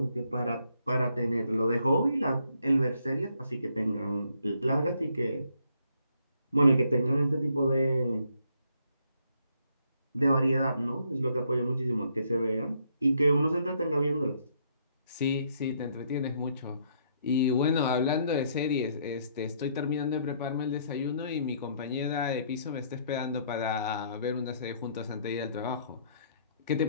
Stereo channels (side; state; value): both; inverted; correlation -0.69